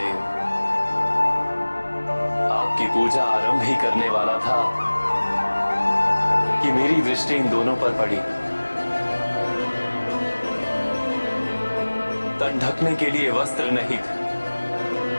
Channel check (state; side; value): inverted; both; correlation -1.00